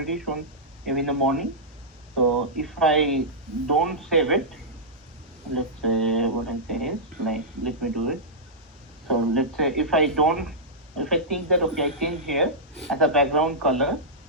shown in the morning. So if I don't save it, let's say what I say is like, let me do it. So let's say if I think that, okay, I change here as a background color.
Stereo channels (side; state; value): both; normal; correlation -0.12